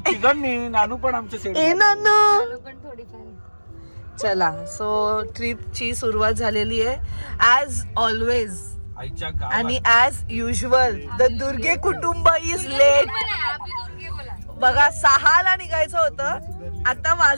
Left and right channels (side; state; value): both; inverted; correlation -1.00